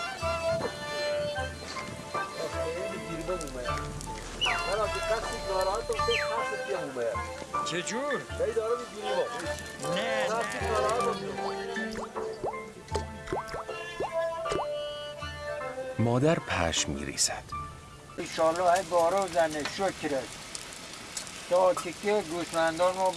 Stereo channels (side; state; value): both; identical; correlation 1.00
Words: چجور؟ نه مادر پشم می ریزد. انشالله های بارو زنه شکرت تا تکه گوسفندان ما